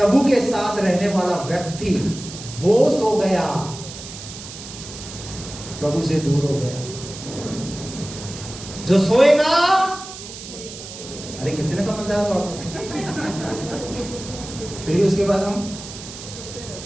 के साथ रहने वाला व्यक्ति वो सो गया, प्रभु से दूर हो गया। जो सोएगा, अरे कितने समझदार हो आप। फिर उसके बाद हम,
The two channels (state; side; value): noise; right; hiss, 12 dB below the sound